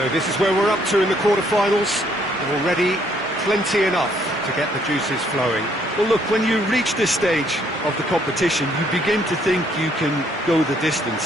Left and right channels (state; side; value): normal; both; correlation 0.67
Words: this is where we're up to in the quarter-finals. Already plenty enough to get the juices flowing. Well, look, when you reach this stage of the competition, you begin to think you can go the